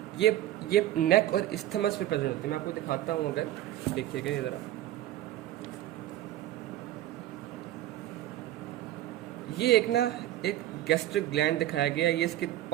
ये नेक और इस्थमस पे प्रेजेंट होती है। मैं आपको दिखाता हूँ, अगर देखिएगा ये ज़रा, ये एक गैस्ट्रिक ग्लैंड दिखाया गया है, ये इसके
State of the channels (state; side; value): quieter; left; 13.7 dB